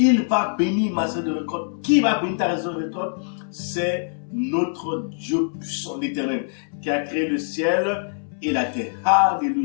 va bénir ma saison de récolte. Qui va bénir ta saison de récolte? C'est notre Dieu puissant, l'Éternel, qui a créé le ciel et la terre.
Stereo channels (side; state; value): right; silent; 63 dB below the other